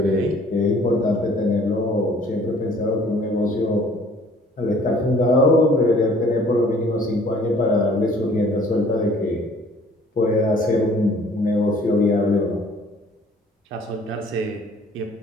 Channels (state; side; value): normal; both; correlation 0.56